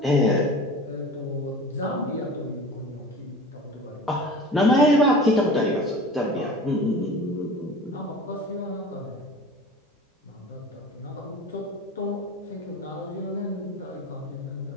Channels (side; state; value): both; normal; correlation 0.38